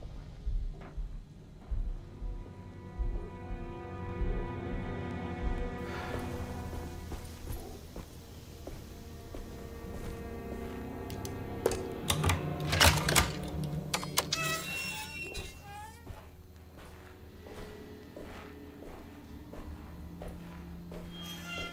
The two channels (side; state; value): both; identical; correlation 1.00